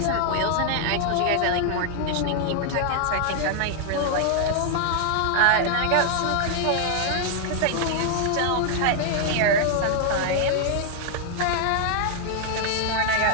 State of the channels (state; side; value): different; both; correlation 0.00